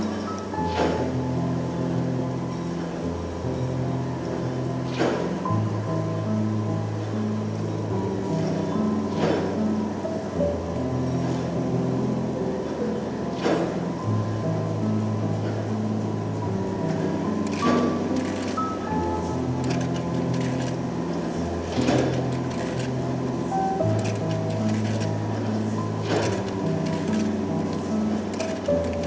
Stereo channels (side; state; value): both; identical; correlation 1.00